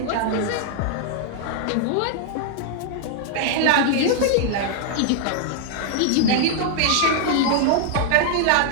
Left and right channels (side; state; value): both; different; correlation 0.00